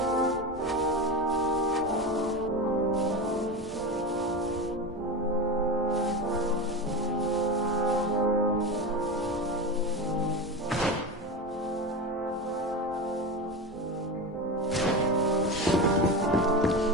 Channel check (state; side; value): normal; both; correlation 0.21